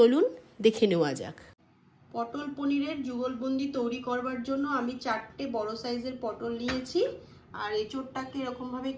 দেখে নেওয়া যাক। পটল পনিরের যুগলবন্দি তৈরি করবার জন্য আমি 4টে বড় সাইজের পটল নিয়েছি আর এঁচোড়টাকে এরকমভাবে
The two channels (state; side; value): identical; both; correlation 1.00